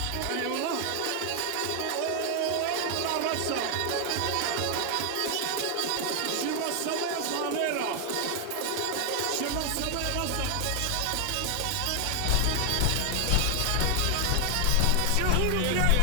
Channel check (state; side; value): different; both; correlation 0.00